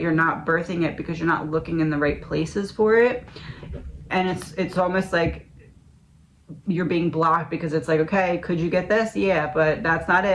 not birthing it because you're not looking in the right places for it. And it's almost like you're being blocked, because it's like, okay, could you get this? Yeah, but that's not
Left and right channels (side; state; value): both; identical; correlation 1.00